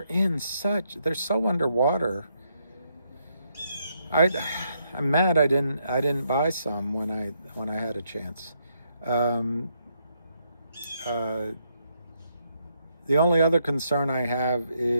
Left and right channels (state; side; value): inverted; both; correlation -0.76